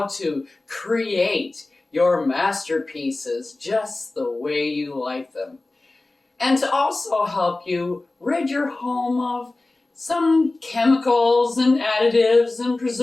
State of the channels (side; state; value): right; quieter; 3.0 dB